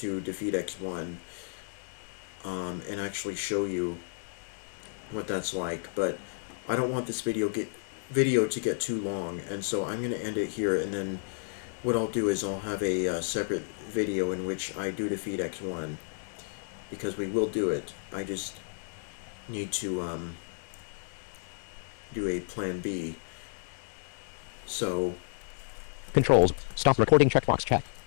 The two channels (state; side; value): silent; right; digital silence